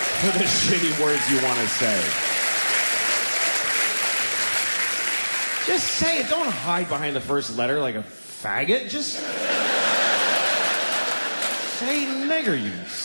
for the shitty words you want to say? Just say it. Don't hide behind the first letter like a faggot. Just say nigger, you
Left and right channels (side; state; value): both; inverted; correlation -1.00